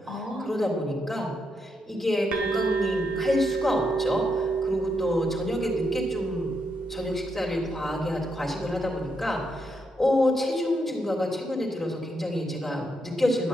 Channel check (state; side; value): normal; both; correlation 0.80